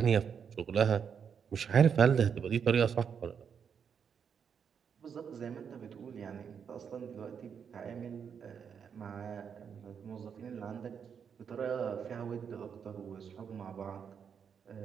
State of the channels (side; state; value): left; quieter; 7.1 dB